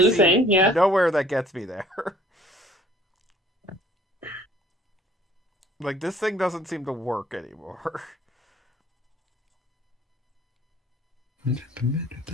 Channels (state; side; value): normal; both; correlation 0.56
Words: see thing, yeah. nowhere that gets me there. Like, this thing doesn't seem to work anymore. And